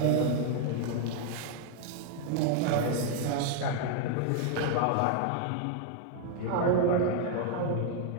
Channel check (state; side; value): different; both; correlation 0.00